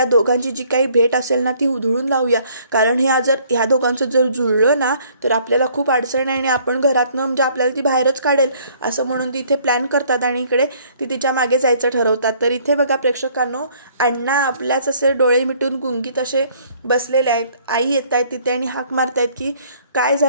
दोघांची जी काही भेट असेल ना ती उधळून लावूया, कारण ह्या दोघांचं जर जुळलं ना तर आपल्याला खूप अडचण आहे आणि आपण घरातनं म्हणजे आपल्याला ती बाहेरच काढेल, असं म्हणून ती इथे प्लॅन करतात आणि इकडे ती तिच्या मागे जायचं ठरवतात. तर इथे बघा प्रेक्षकांनो, अण्णा आपल्याच असे डोळे मिटून गुंगीत असे बसलेले आहेत. आई येत आहेत तिथे आणि हाक मारतायत की काय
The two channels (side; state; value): both; inverted; correlation -0.60